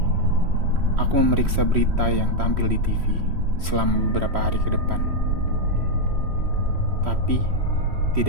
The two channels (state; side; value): late; left; 3.1 ms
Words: Aku memeriksa berita yang tampil di TV selama beberapa hari ke depan. Tapi,